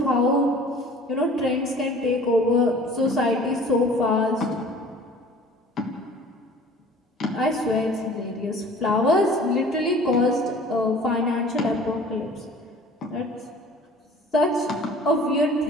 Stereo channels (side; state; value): both; normal; correlation 0.47